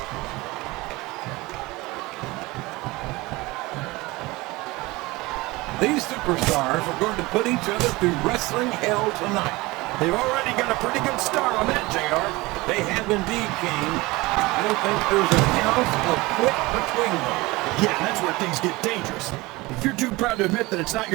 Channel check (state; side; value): quieter; left; 21.7 dB